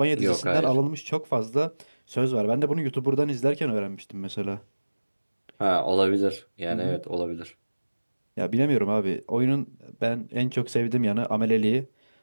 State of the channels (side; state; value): both; inverted; correlation -1.00